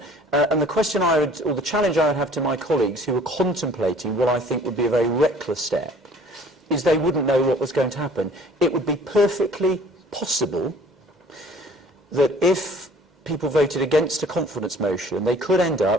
And the question I would, or the challenge I would have to my colleagues who were contemplating what I think would be a very reckless step, is they wouldn't know what was going to happen. It would be perfectly possible that if people voted against a confidence motion, they could end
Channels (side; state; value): both; normal; correlation 0.52